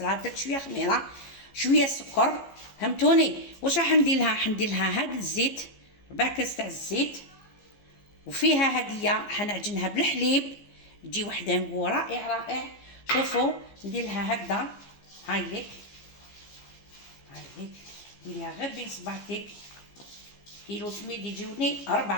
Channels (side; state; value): right; late; 15 ms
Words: درت شويه خميره شويه سكر، فهمتوني. واش راح ندير لها؟ حندير لها هاد الزيت، 4 كاس تاع الزيت، وفيها هديه حنعجنها بالحليب تجي وحده نقول رائع رائع. شوفوا ندير لها هكذا، هاي ليك هاي ديريها غير بين صباعتك. كيلو سميد يجيوني